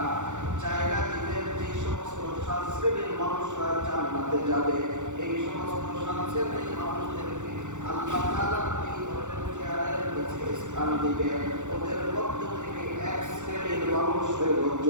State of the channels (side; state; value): left; late; 0.85 ms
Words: জায়গা দিবেন। যে সমস্ত 7 শ্রেণীর মানুষরা জান্নাতে যাবে, এই সমস্ত 7 শ্রেণীর মানুষদেরকে আল্লাহ তাআলা এই ধরনের চেয়ারের নিচে স্থান দিবেন। ওদের মধ্য থেকে 1 শ্রেণীর মানুষ হলো